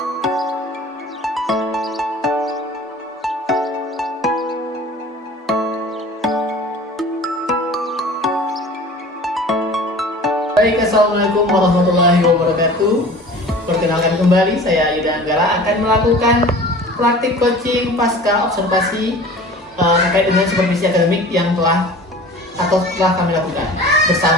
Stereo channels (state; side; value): normal; both; correlation 0.42